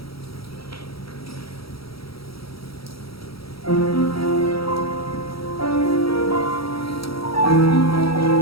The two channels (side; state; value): right; late; 0.75 ms